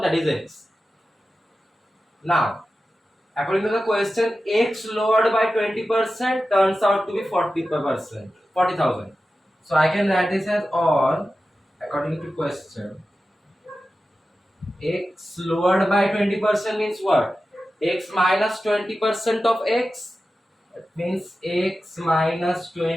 that is X. Now, according to the question, X lowered by 20% turns out to be 40%, 40,000. So I can write this as, or according to question, X lowered by 20% means what? X minus 20% of X. That means X minus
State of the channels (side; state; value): both; normal; correlation 0.93